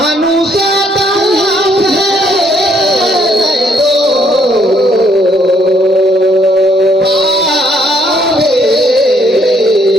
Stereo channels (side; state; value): both; normal; correlation 0.68